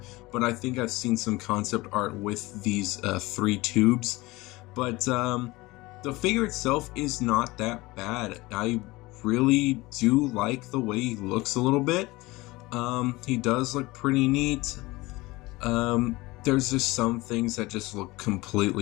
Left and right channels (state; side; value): quieter; right; 21.2 dB